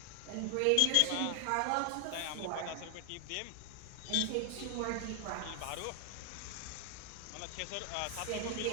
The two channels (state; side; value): different; both; correlation 0.00